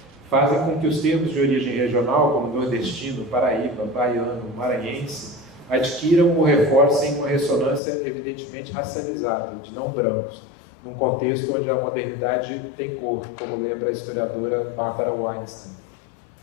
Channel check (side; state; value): right; drops out; at 7.8 s